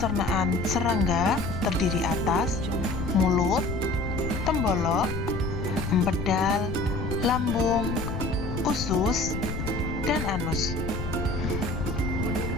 serangga terdiri atas mulut, tembolok, empedal, lambung, usus, dan anus.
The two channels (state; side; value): noise; left; rumble, 6 dB below the sound